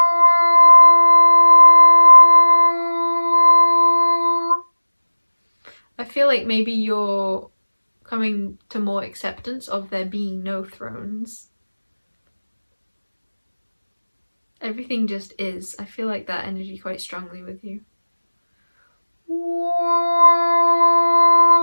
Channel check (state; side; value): inverted; both; correlation -1.00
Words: I feel like maybe you're coming to more acceptance of there being no thrones. Everything just is. I feel like that energy quite strongly with you.